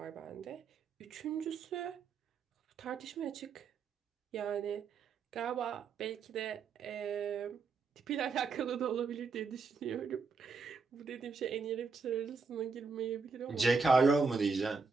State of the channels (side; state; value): left; quieter; 4.8 dB